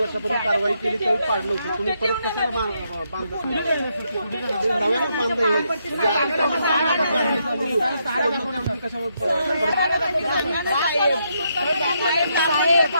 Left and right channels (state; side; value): inverted; both; correlation -0.78